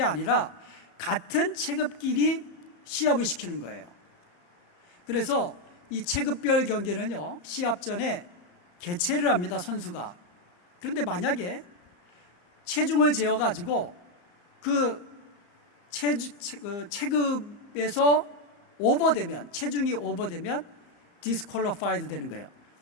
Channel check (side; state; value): right; late; 34 ms